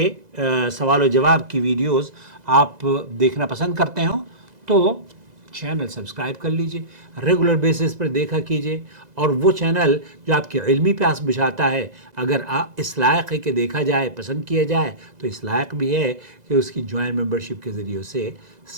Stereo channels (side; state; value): left; late; 2.0 ms